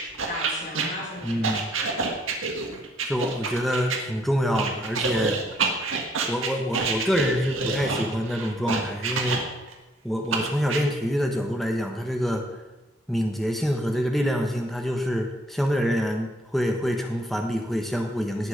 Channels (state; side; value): normal; both; correlation 0.66